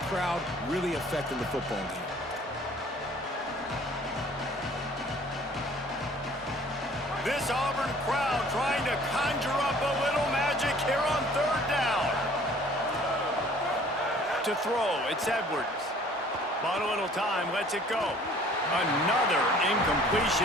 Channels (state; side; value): normal; both; correlation 0.53